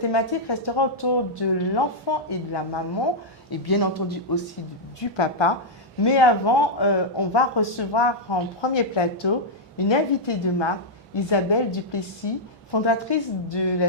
restera autour de l'enfant et de la maman, et bien entendu aussi du papa. Mais avant, on va recevoir en premier plateau une invitée de marque, Isabelle Duplessis, fondatrice de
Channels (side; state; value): both; normal; correlation -0.06